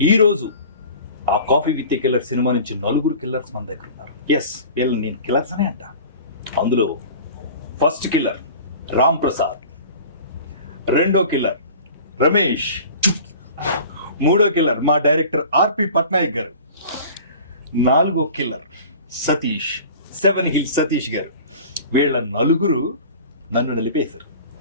ఈరోజు ఆ coffee with a killer cinema నుంచి 4 కిల్లర్స్ మన దగ్గర ఉన్నారు. ఎస్, వీళ్ళు నేను కిల్లర్స్ అనే అంట. అందులో ఫస్ట్ కిల్లర్ రామ్ ప్రసాద్, రెండో కిల్లర్ రమేష్, మూడో కిల్లర్ మా డైరెక్టర్ ఆర్పి పట్నాయక్ గారు, నాలుగో కిల్లర్ సతీష్, 7 హిల్స్ సతీష్ గారు. వీళ్ళ 4 నన్ను నలిపేశారు.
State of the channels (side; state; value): both; inverted; correlation -0.42